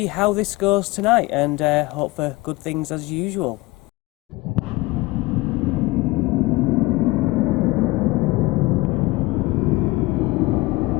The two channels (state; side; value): quieter; right; 20.9 dB